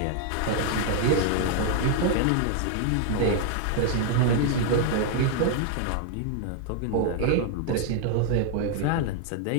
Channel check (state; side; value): different; both; correlation 0.00